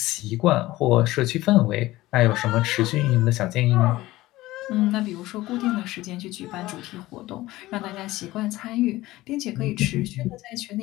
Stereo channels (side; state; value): right; quieter; 17.6 dB